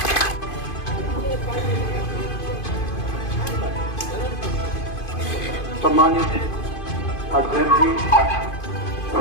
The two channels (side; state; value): right; late; 2.5 ms